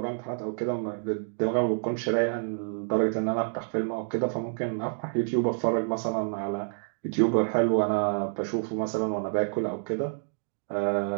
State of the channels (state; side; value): silent; left; digital silence